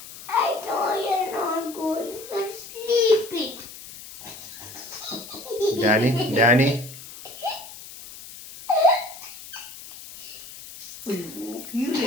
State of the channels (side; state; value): left; noise; hiss, 15 dB below the sound